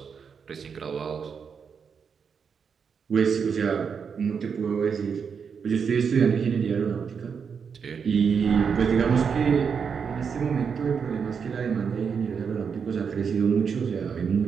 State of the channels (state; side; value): quieter; left; 6.4 dB